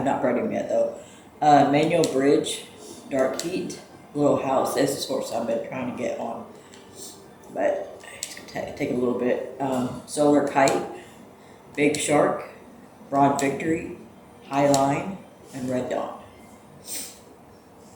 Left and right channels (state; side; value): identical; both; correlation 1.00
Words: not bred him yet though. Manual Bridge, Dark Heat, Little House. This is horse I've been trying to get on, but it's gonna take a little bit. Solar Kite, Big Shark, Broad Victory, High Line, and Red Dawn.